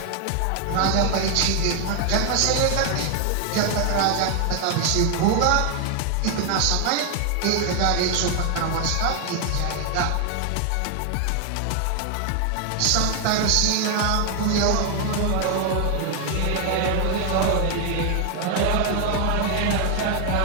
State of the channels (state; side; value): different; both; correlation 0.00